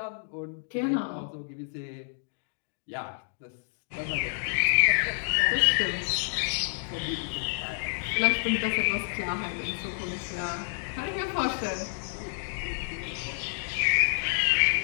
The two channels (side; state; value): right; silent; digital silence